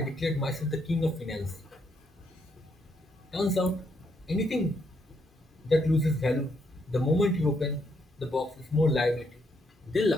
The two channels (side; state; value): both; normal; correlation 0.75